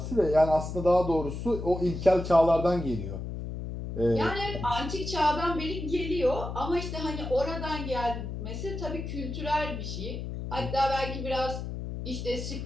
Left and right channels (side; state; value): left; noise; hum, 6 dB below the sound